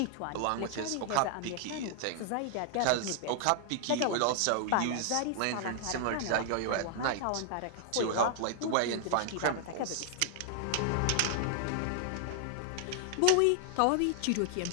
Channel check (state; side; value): different; both; correlation 0.00